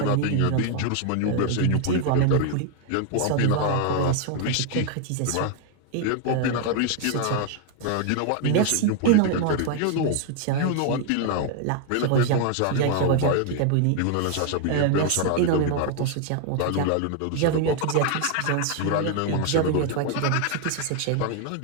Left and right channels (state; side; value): different; both; correlation 0.00